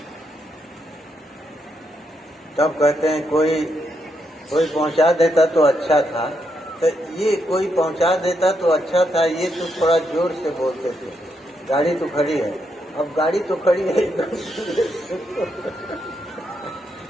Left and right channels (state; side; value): normal; both; correlation 0.80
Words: तब कहते हैं कोई पहुंचा देता तो अच्छा था। तो ये कोई पहुंचा देता तो अच्छा था, ये तो थोड़ा जोर से बोलते थे। गाड़ी तो खड़ी है, अब गाड़ी तो खड़ी है